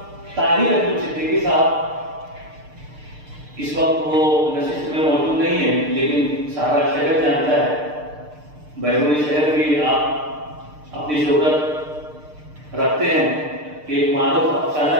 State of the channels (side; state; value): left; late; 6.6 ms